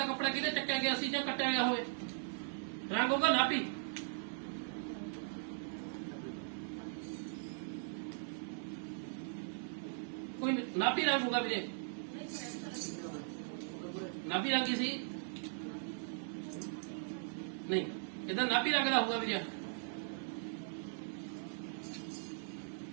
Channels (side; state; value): left; silent; digital silence